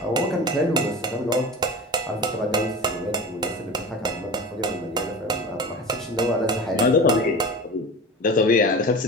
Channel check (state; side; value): normal; both; correlation 0.32